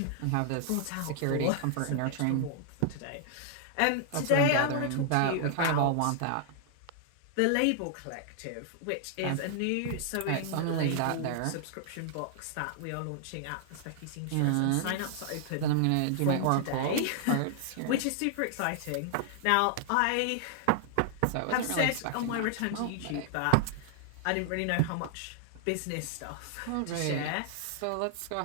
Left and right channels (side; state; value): both; different; correlation -0.01